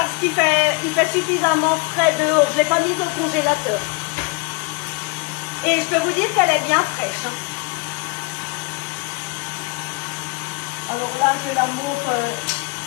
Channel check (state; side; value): quieter; right; 27.7 dB